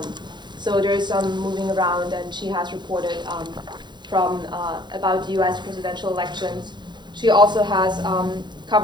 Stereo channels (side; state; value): left; late; 0.21 ms